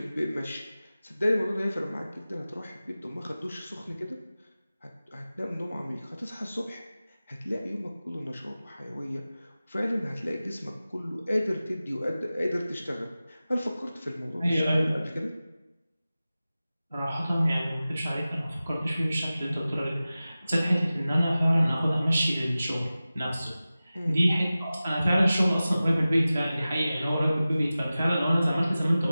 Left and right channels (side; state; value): both; inverted; correlation -0.96